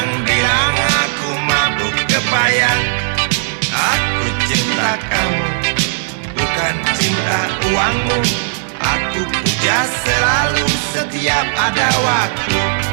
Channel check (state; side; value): silent; left; digital silence